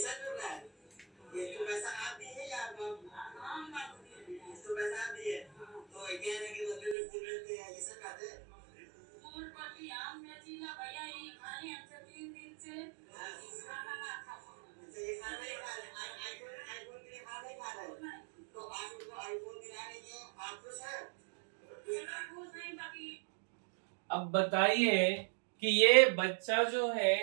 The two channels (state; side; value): drops out; left; at 7.0 s